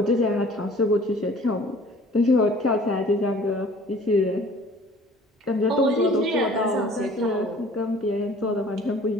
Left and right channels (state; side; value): normal; both; correlation 0.50